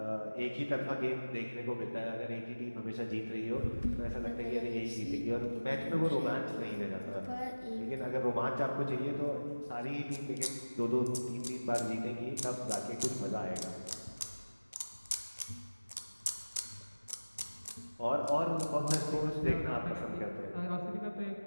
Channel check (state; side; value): inverted; both; correlation -1.00